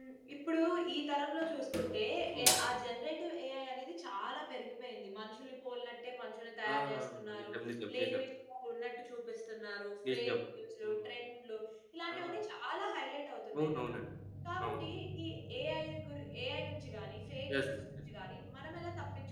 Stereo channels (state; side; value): identical; both; correlation 1.00